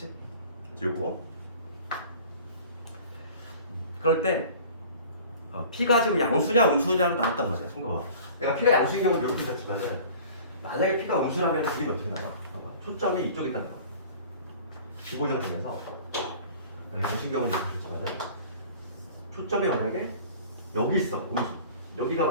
그래서 요거 그럴 때 p가 지금 양수냐 음수냐로 나눴단 말이야. 봐봐. 내가 p가 양수인 경우는 이렇게 됐지만은 만약에 p가 음수라면 그림이 어떻게 나와? 봐봐. 초점이 이쪽에 있다 나와. 기본형 중에서 양수인 경우는 이렇게 됐지만은 초점이 만약에 여기 있어. 음수. 여기가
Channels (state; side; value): inverted; both; correlation -0.45